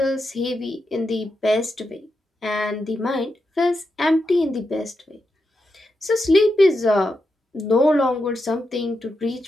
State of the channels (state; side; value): normal; both; correlation 0.86